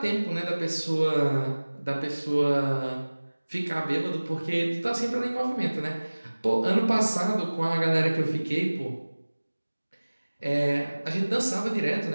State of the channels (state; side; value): inverted; both; correlation -1.00